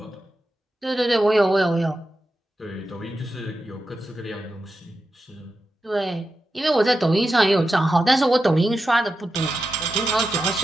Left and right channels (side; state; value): both; normal; correlation 0.90